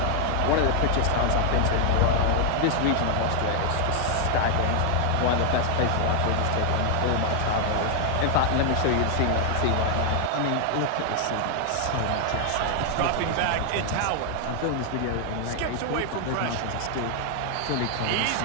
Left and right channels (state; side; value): different; both; correlation 0.00